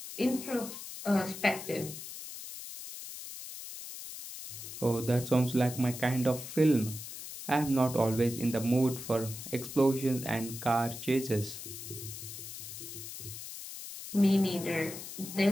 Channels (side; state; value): left; noise; hiss, 10 dB below the sound